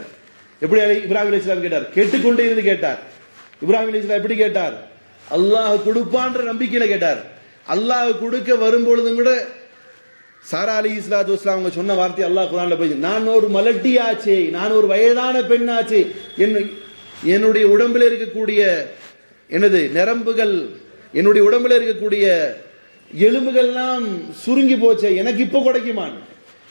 எப்படி இப்ராஹிம் அலைஹிஸ்ஸலாம் கேட்டார்? கேட்டுக்கொண்டே இருந்து கேட்டார். இப்ராஹிம் அலைஹிஸ்ஸலாம் எப்படி கேட்டார்? அல்லாஹ் கொடுப்பான்ற நம்பிக்கையில கேட்டார். அல்லாஹ் கொடுக்க வரும்பொழுதும் கூட சாரா அலைஹிஸ்ஸலாத்து வஸ்ஸலாம் அவங்க சொன்ன வார்த்தை அல்லாஹ் குர்ஆன்ல போய், நான் ஒரு மலட்டியாச்சே, நான் ஒரு வயதான பெண்ணாச்சே, என்னுடைய உடம்பில் இருக்கக்கூடிய எனது நரம்புகள், என்னுடைய உடம்பில் இருக்கக்கூடிய எலும்புகள்லாம் சுருங்கி போச்சே, எனக்கு இப்போ கிடைக்குமான்.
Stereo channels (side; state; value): both; inverted; correlation -1.00